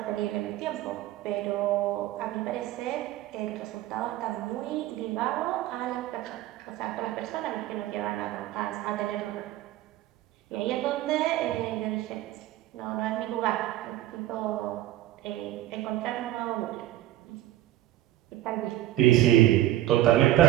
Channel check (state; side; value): quieter; left; 14.5 dB